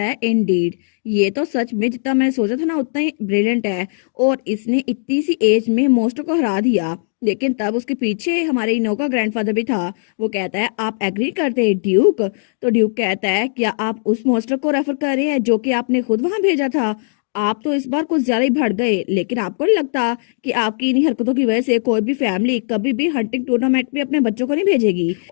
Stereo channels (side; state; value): right; silent; digital silence